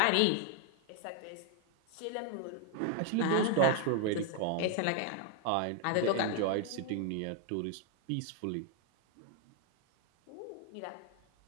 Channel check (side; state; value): both; different; correlation 0.00